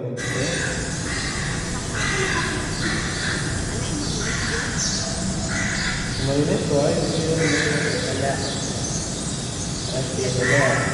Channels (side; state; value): both; identical; correlation 1.00